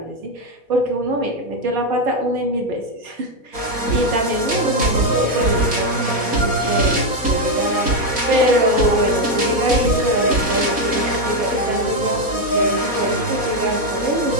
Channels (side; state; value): left; late; 4.1 ms